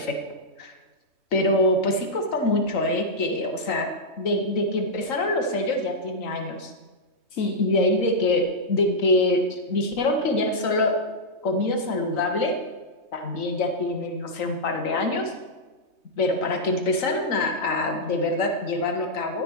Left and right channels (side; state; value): right; late; 3.9 ms